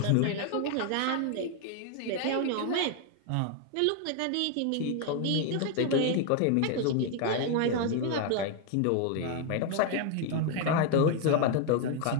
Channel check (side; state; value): both; different; correlation 0.01